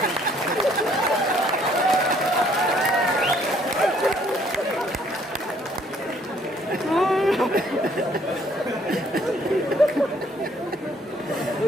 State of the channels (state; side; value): normal; both; correlation 0.63